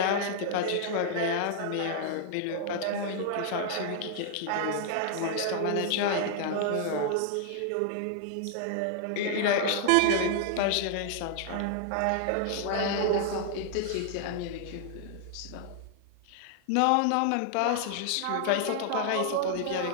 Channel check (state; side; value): different; both; correlation 0.00